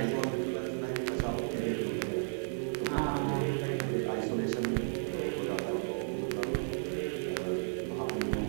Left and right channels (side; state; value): left; silent; digital silence